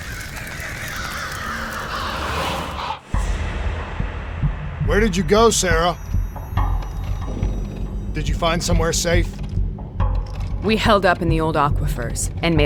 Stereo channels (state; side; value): identical; both; correlation 1.00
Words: Where did you go, Sarah? Did you find somewhere safe? We held up in the old aquifers and